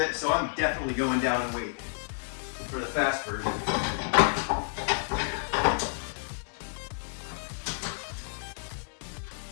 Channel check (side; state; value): right; silent; digital silence